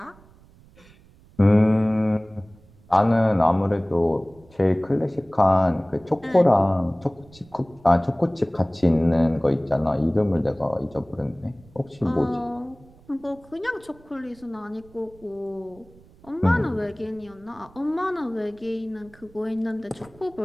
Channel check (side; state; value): right; noise; rumble, 26 dB below the sound